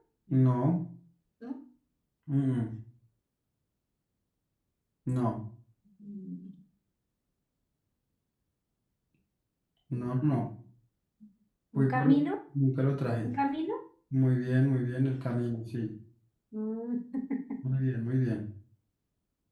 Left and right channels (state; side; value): identical; both; correlation 1.00